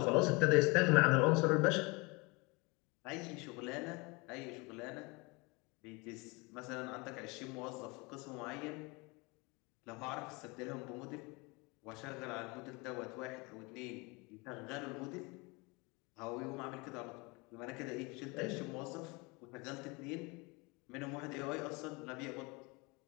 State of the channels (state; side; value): quieter; right; 27.1 dB